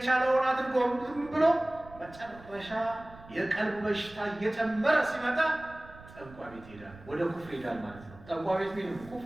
አድርጎ ብሎ መጨረሻ የቀልብ በሽታ እየጨመረ ሲመጣ ጠንቋይ ቤት ይሄዳል፣ ወደ ኩፍር ይሄዳል ማለት ነው። ጠንቋይ ቤት ምን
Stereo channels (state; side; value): noise; right; rumble, 19 dB below the sound